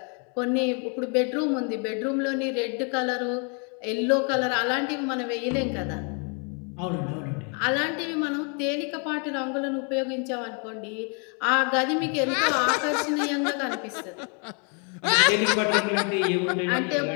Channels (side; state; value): right; quieter; 37.3 dB